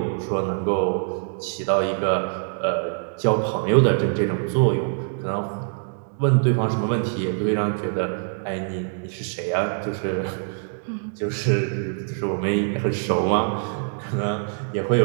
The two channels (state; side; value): silent; left; digital silence